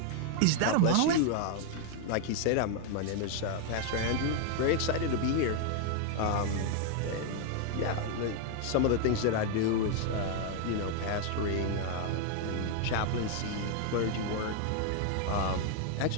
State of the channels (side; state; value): both; different; correlation 0.01